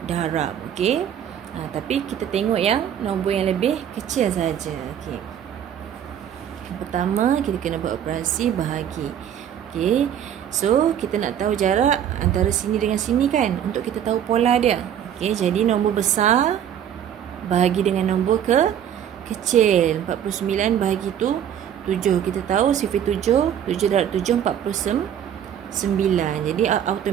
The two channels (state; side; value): quieter; left; 9.6 dB